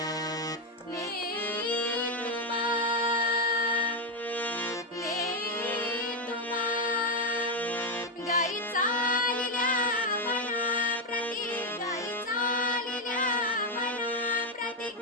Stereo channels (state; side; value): normal; both; correlation 0.05